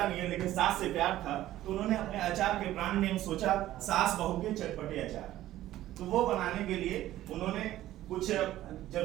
नहीं है, लेकिन सास से प्यार था तो उन्होंने अपने अचार के ब्रांड नेम सोचा सास बहू के चटपटे अचार। तो वो बनाने के लिए उन्होंने कुछ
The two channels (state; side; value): quieter; left; 14.2 dB